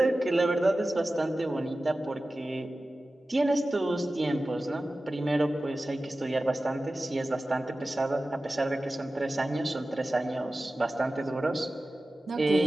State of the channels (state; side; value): normal; both; correlation 0.96